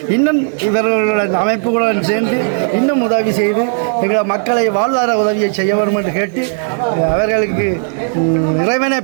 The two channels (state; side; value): silent; left; 65 dB below the other